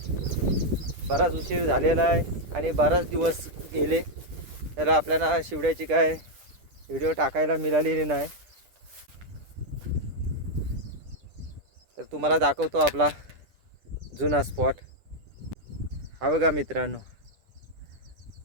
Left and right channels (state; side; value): late; left; 10 ms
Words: बराच उशीर झालेला आहे आणि बराच दिवस गेले, तर आपल्याला शिवड्याची काय व्हिडिओ टाकायला मिळालेली नाही. तर तुम्हाला दाखवतो आपला जुना स्पॉट. हा बघा मित्रांनो,